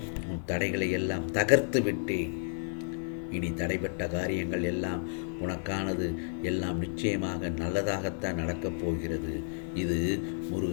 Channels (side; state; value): right; silent; 57 dB below the other